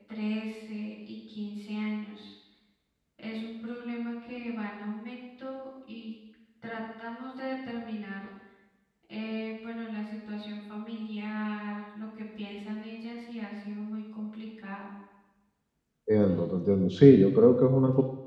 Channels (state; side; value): identical; both; correlation 1.00